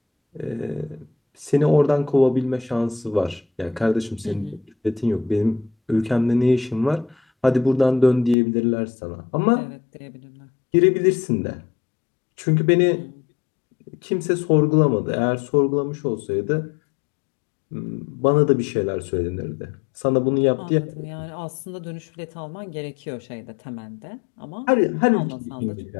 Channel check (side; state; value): right; drops out; at 8.3 s